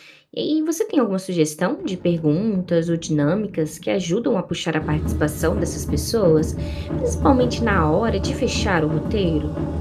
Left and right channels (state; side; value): identical; both; correlation 1.00